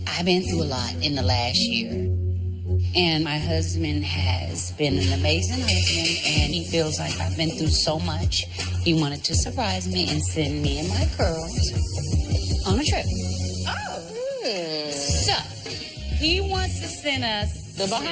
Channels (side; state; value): both; identical; correlation 1.00